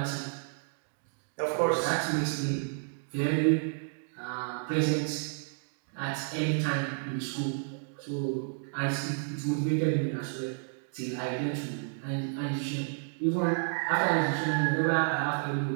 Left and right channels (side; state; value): left; silent; digital silence